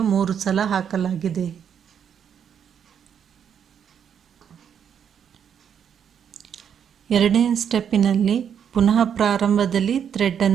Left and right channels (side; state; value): left; quieter; 8.2 dB